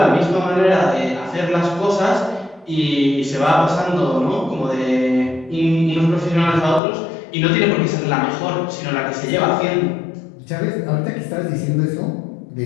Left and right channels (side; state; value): right; drops out; at 6.8 s